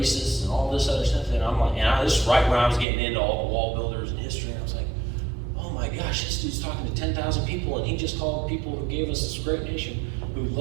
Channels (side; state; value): left; drops out; at 2.9 s